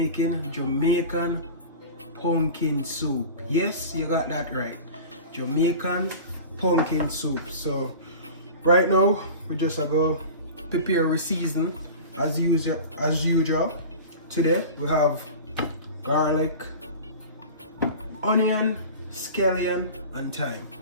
Jamaican pumpkin soup. Yes, you got that right, Jamaican pumpkin soup. So right now we just go prepare a season as usual. Today we have garlic, onion, scallion and thyme.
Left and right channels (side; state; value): both; inverted; correlation -0.35